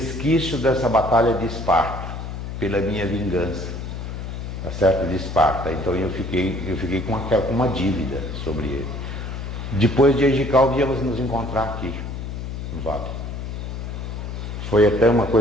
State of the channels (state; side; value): noise; left; hum, 7 dB below the sound